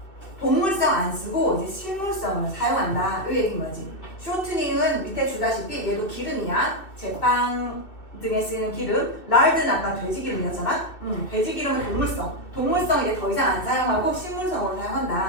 동물성 안 쓰고 이제 식물성을 사용한다. 이 얘기인 거지. 쇼트닝은 밑에 주다시피 얘도 기름이야. 제빵 등에 쓰이는 기름. 랄드는 아까 돼지 기름이었잖아. 돼지 기름은 동물성. 동물성 이제 더 이상 안 사용하고 식물성으로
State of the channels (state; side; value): late; right; 2.7 ms